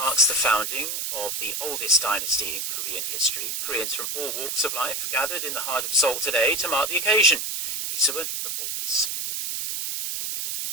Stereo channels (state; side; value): noise; right; hiss, 3 dB below the sound